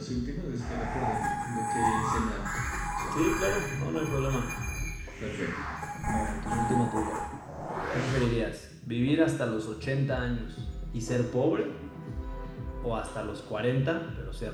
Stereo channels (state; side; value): identical; both; correlation 1.00